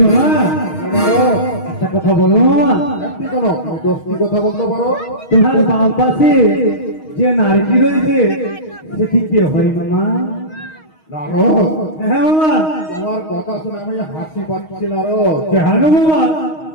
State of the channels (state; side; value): late; right; 6.4 ms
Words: মামা একটা কথা বলো মামা। একটি কোনো দশটি কথা বলতে পারো? তোমার বাম পাশে যে নারী রয়েছে সেটি কে হয় মামা? নারদ। হ্যাঁ মামা। তোমার কথা শুনে আমি হাসি পাচ্ছি নারদ। কেন মামা?